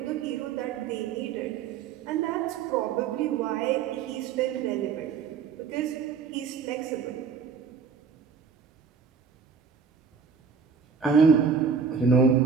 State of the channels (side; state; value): left; quieter; 6.1 dB